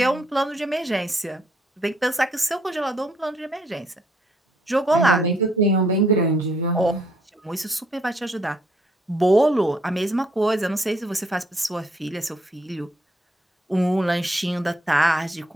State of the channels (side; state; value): both; normal; correlation 0.68